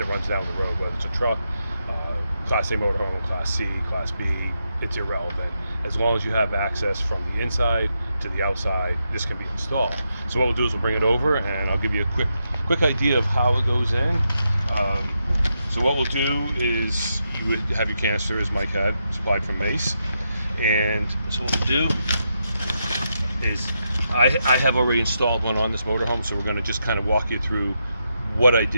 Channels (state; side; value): inverted; both; correlation -0.84